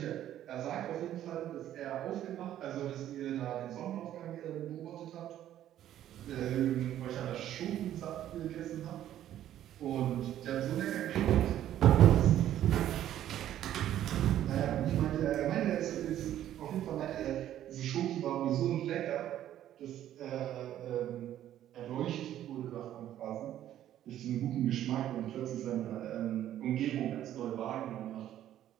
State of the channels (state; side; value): quieter; left; 11.9 dB